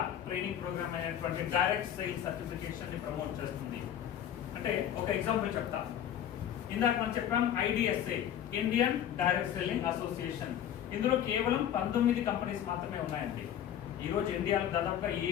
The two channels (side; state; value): right; quieter; 10.3 dB